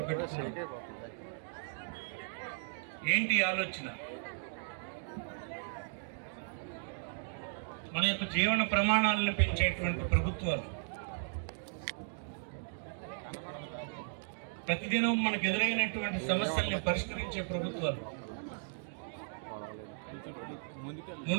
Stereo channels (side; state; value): left; silent; digital silence